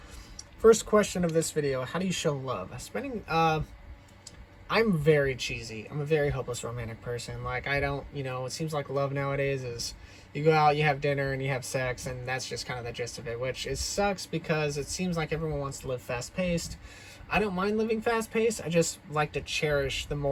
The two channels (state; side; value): identical; both; correlation 1.00